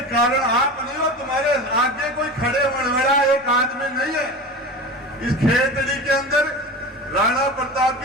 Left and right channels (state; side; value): normal; both; correlation 0.30